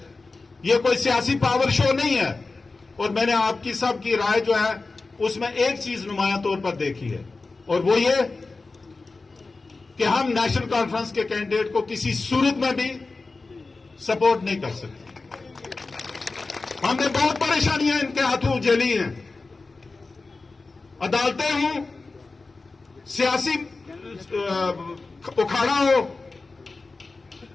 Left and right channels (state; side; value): quieter; right; 3.7 dB